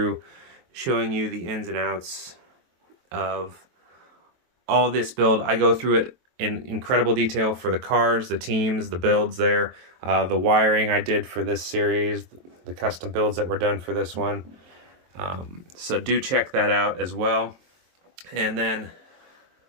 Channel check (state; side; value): late; left; 23 ms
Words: showing you the ins and outs of all this build, I go through it in incredible detail for the cars, the teams, the builds there, the wiring I did for this series, the custom builds that were done for this one. So do check that out as well. And then